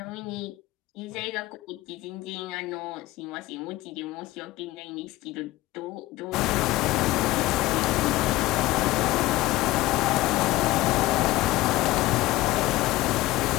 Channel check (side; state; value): right; quieter; 18.0 dB